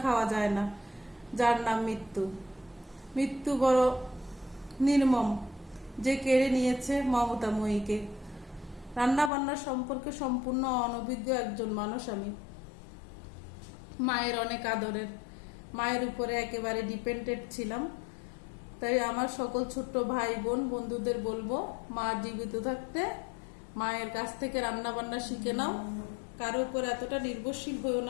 খাওয়া যায় না। যার নাম মৃত্যু। মৃত্যু বড় নির্মম, যে কেড়ে নিয়েছে মমতাময়ীকে। রান্না বান্নার সম্পর্কে সম্পূর্ণ অনভিজ্ঞ একজন মানুষ আমি। মায়ের অনেক আদরের, মায়ের উপরে একেবারে ডিপেন্ডেন্ট ছিলাম। তাই আমার সকল ছোট্ট ভাই বোন বন্ধুদের বলবো, মা জীবিত থাকতে মায়ের কাছ থেকে রান্না বান্না শিখে নাও। কারো উপর এতটা নির্ভরশীল হয়েও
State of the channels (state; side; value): drops out; right; at 9.3 s